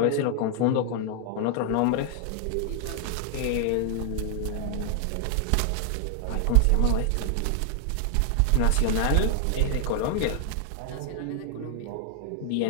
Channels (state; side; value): different; both; correlation 0.00